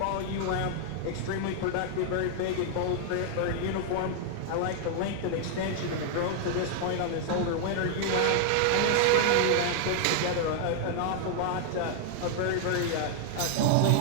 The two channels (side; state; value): both; different; correlation 0.00